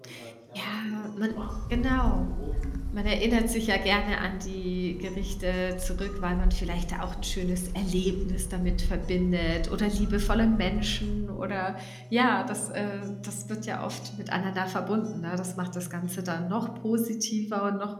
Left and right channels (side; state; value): both; identical; correlation 1.00